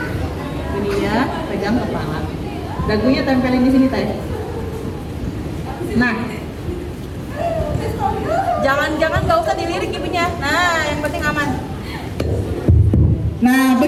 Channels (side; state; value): both; identical; correlation 1.00